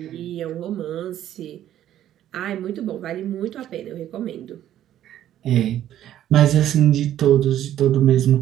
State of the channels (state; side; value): quieter; left; 11.8 dB